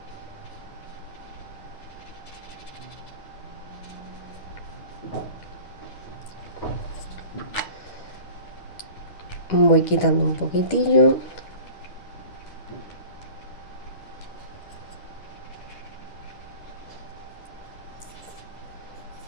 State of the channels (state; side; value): late; right; 10 ms